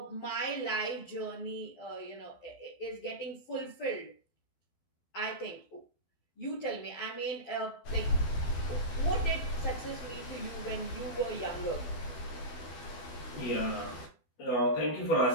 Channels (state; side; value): late; right; 12 ms